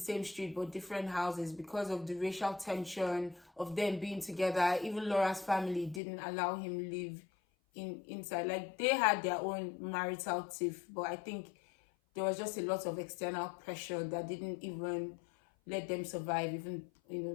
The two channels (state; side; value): drops out; right; at 6.0 s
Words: street, but different houses because of the racial tension of them being together. Even Laura's family didn't allow him live inside. Like, they had their own marital tiff, but I think there was just a lot of external pressure that didn't even let them survive, even, you know,